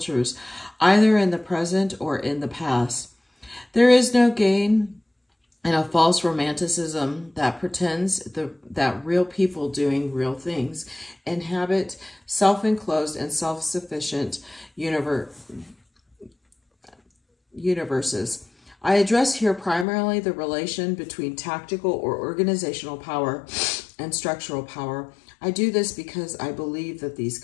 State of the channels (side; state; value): right; drops out; at 19.9 s